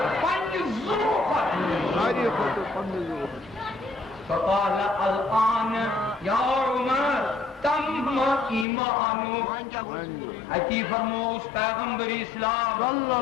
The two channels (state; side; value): drops out; right; at 8.7 s